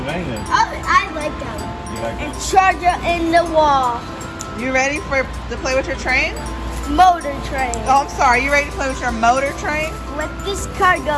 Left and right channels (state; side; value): identical; both; correlation 1.00